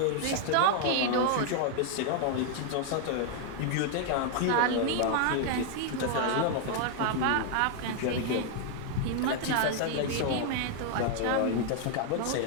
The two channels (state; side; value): different; both; correlation 0.00